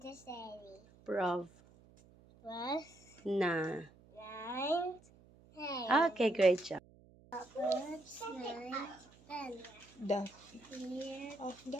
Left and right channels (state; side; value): noise; right; hum, 25 dB below the sound